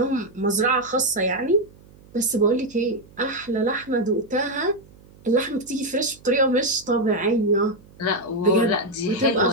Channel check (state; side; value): noise; right; hum, 25 dB below the sound